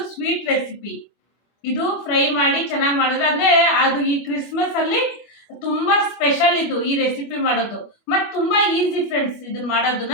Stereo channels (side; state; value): right; late; 25 ms